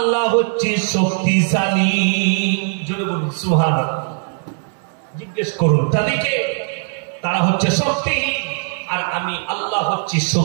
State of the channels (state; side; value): silent; left; 62 dB below the other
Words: হচ্ছি শক্তিশালী। জোরে বলুন সুবহানাল্লাহ। জিজ্ঞেস করুন তাদেরকে, তারা হচ্ছে শক্তিহীন আর আমি আল্লাহ হচ্ছি